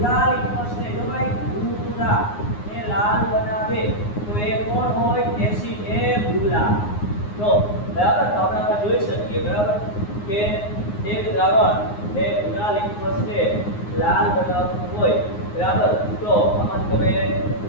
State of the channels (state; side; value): late; right; 9.6 ms